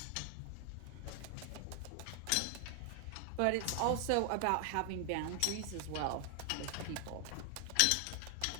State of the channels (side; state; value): both; different; correlation 0.00